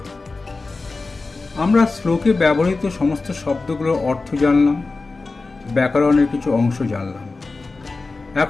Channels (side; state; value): right; quieter; 3.7 dB